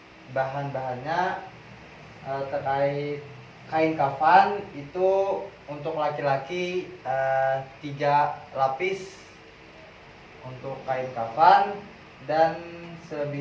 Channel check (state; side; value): identical; both; correlation 1.00